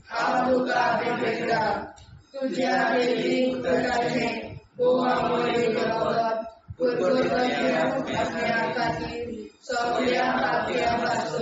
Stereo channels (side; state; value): both; identical; correlation 1.00